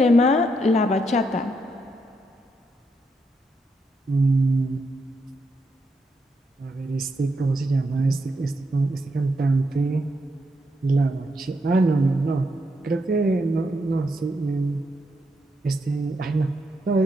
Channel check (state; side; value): normal; both; correlation 0.80